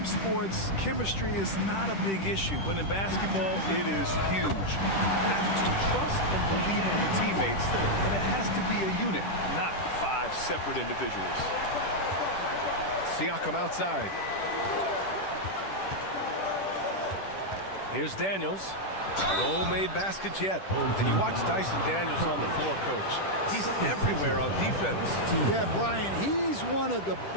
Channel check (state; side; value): late; right; 10 ms